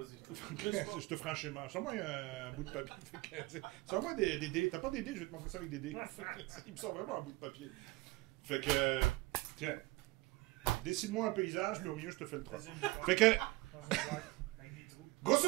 Je te ferai un schéma. Sors-moi un bout de papier. Sors-moi des dés. T'as pas des dés? Je vais te montrer ça avec des dés. Il me sort vraiment un bout de papier. Fait que... Tiens. Dessine-moi un paysage, mais au milieu, je te fais le troll. Fait que... Dans un boîte, avec des trous.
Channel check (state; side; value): quieter; left; 20.7 dB